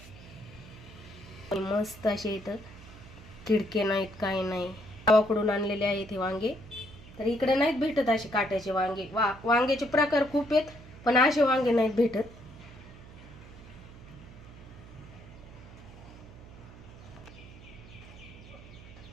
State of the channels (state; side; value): noise; right; hum, 18 dB below the sound